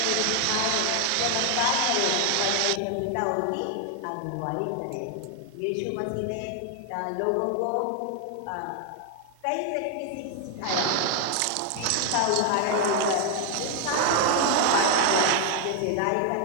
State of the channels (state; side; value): different; both; correlation 0.00